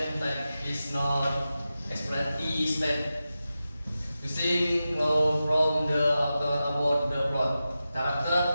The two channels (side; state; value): both; inverted; correlation -0.92